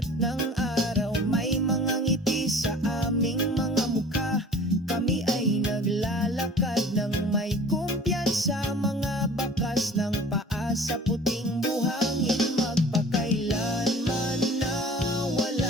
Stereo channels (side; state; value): both; normal; correlation 0.45